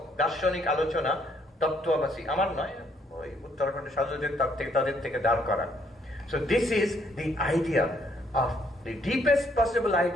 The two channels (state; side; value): normal; both; correlation 0.69